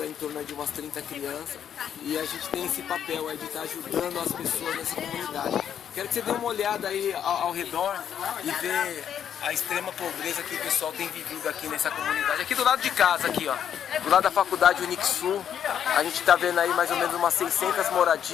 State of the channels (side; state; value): right; quieter; 9.0 dB